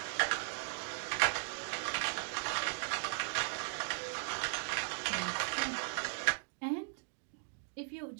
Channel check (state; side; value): silent; left; digital silence